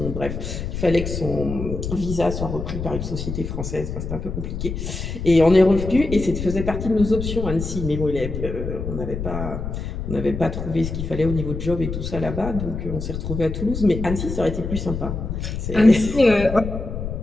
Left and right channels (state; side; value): noise; left; rumble, 5 dB below the sound